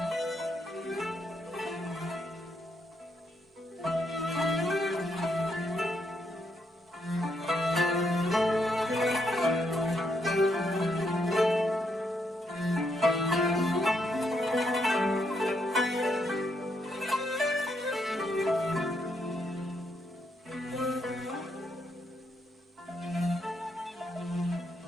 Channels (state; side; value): normal; both; correlation 0.77